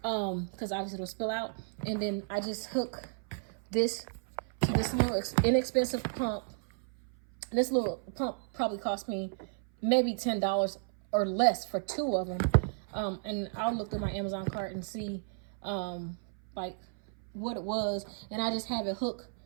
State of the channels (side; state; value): left; silent; 56 dB below the other